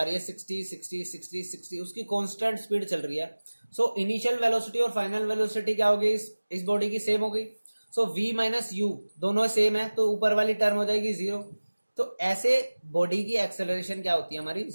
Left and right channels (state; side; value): inverted; both; correlation -1.00